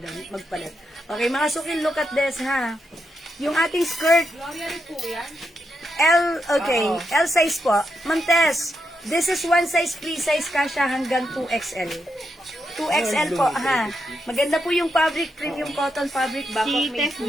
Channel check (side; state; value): both; normal; correlation 0.83